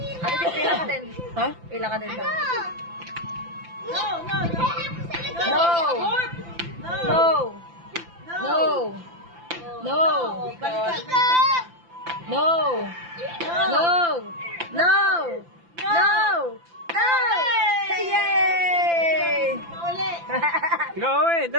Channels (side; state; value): left; late; 5.9 ms